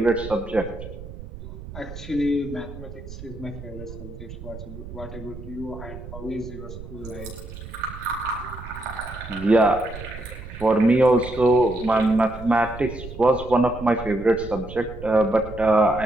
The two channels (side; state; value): right; noise; rumble, 13 dB below the sound